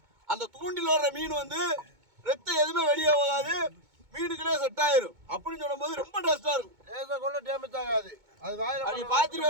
அந்த தூண்டில் வர்ற மீன் வந்து ரத்தம் எதுவுமே வெளியே போகாது, மீனுக்குள்ளே செட் ஆயிரும். அப்படின்னு சொல்லும்போது ரொம்ப டேஸ்டா இருக்கும். கூட டேமேஜ் ஆகாது. அது வாயில அப்படி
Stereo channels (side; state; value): left; late; 2.2 ms